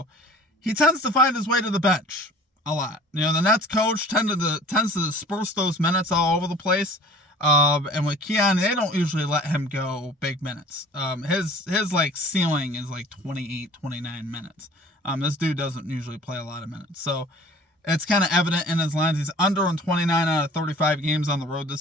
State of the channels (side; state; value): both; normal; correlation 0.47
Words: he tends to find his way to the bench a lot. The Nets coach tends to disperse those minutes all over the place. And with Keon, they don't usually let him go big minutes. His like ceiling is like 28, 29 minutes. This dude doesn't usually play a lot of minutes. So it's kind of evident in his lines. He's under in 29 out of 35 games on the road this